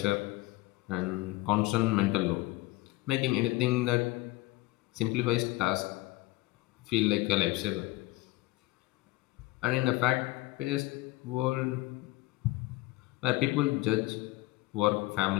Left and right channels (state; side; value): quieter; right; 19.7 dB